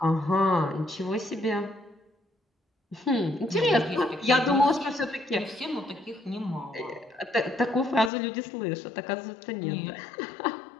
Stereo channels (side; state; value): right; drops out; at 8.1 s